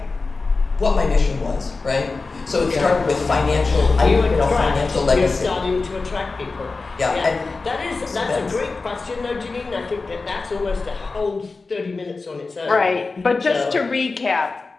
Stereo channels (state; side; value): quieter; right; 3.9 dB